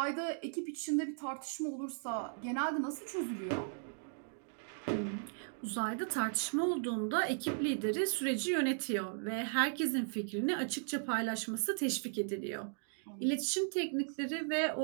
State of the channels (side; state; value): left; silent; digital silence